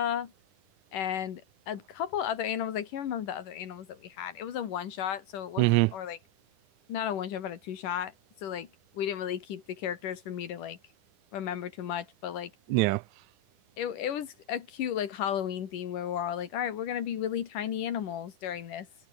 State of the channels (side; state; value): right; late; 10 ms